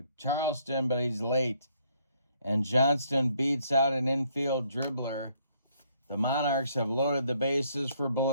Charleston, but he's late. And Johnston beats out an infield dribbler. The Monarchs have loaded the bases for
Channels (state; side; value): inverted; both; correlation -0.68